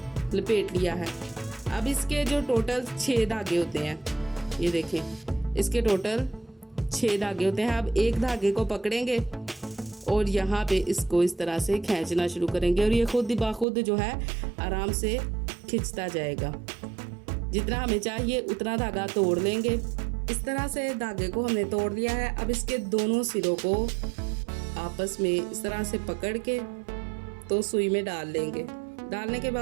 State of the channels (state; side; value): drops out; left; at 13.7 s